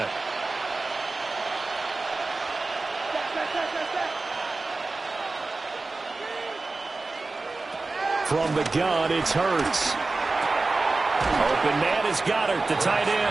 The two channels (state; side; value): quieter; left; 3.5 dB